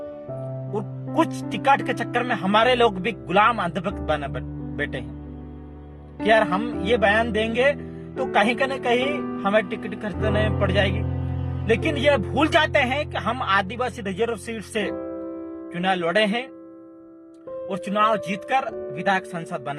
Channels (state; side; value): identical; both; correlation 1.00